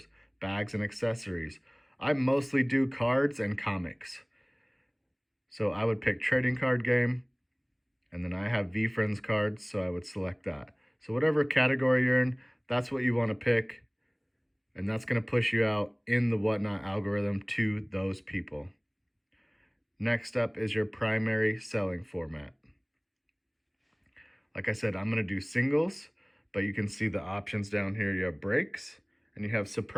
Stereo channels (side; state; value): both; identical; correlation 1.00